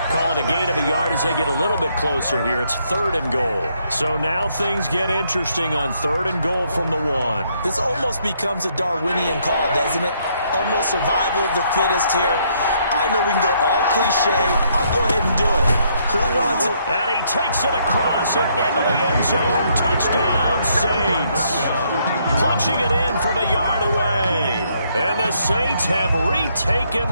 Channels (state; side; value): inverted; both; correlation -0.71